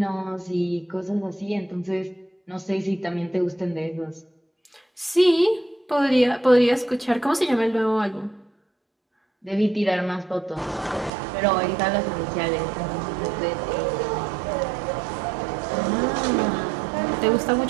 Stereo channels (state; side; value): drops out; left; at 11.1 s